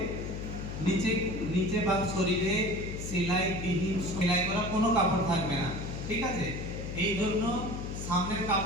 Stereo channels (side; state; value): left; noise; hum, 6 dB below the sound